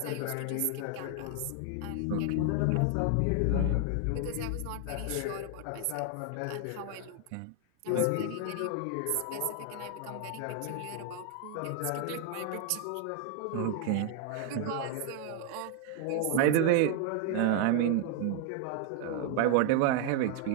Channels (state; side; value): different; both; correlation 0.00